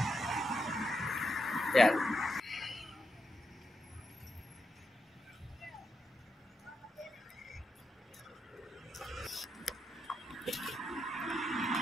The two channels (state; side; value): normal; both; correlation 0.85